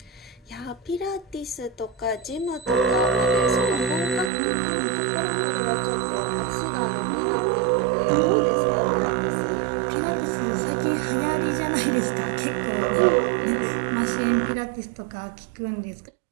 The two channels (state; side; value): drops out; left; at 4.3 s